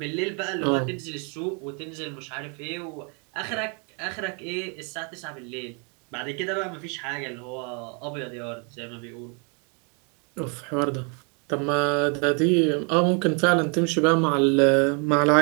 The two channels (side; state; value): left; quieter; 36.4 dB